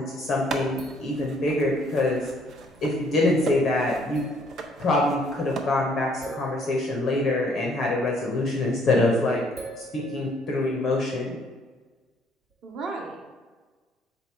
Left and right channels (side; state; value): both; normal; correlation 0.63